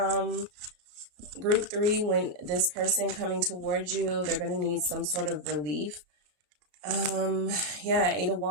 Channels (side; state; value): left; late; 34 ms